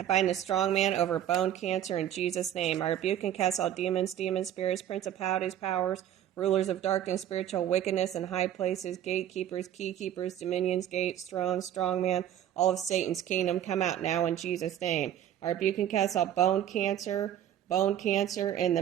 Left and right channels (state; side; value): quieter; left; 11.0 dB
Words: bind the strong man over bone cancer in Jesus' name. I rebuke and cast all demons, spirits, principalities, powers, rulers of darkness, spiritual wickedness in high places, gatekeepers, keykeepers, dominions, gates, thrones, strong man, all of Satan's kingdom. Come out now in Jesus' name. I rebuke and cast all bone cancer in